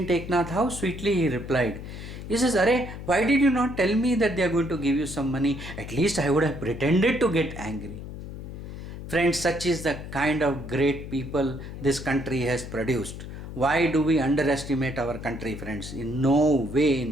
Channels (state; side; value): noise; left; hum, 10 dB below the sound